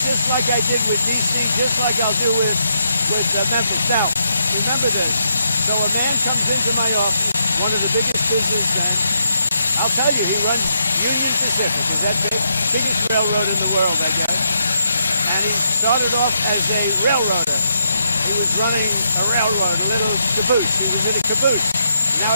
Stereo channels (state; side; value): inverted; both; correlation -0.79